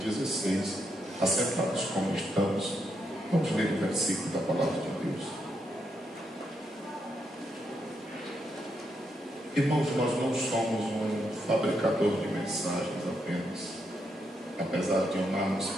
16. Assentados como estamos, vamos ler o versículo da palavra de Deus. Irmãos, nós não somos um fabricador de mensagens apenas, apesar de amarmos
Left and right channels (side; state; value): both; normal; correlation 0.80